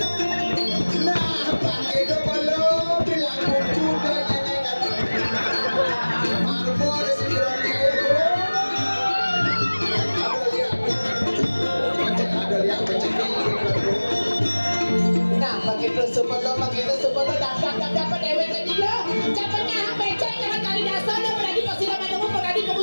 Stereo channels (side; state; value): both; inverted; correlation -1.00